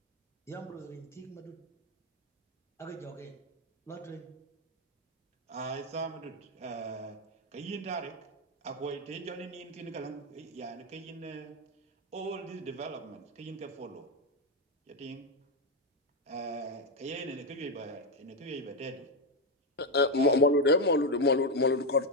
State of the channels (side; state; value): both; normal; correlation 0.07